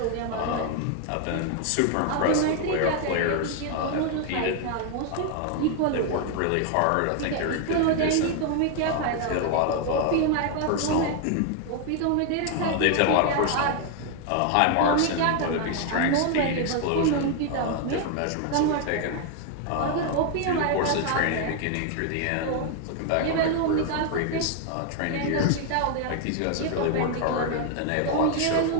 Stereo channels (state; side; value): different; both; correlation 0.00